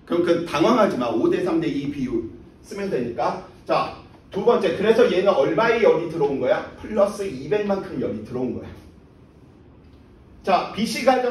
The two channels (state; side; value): identical; both; correlation 1.00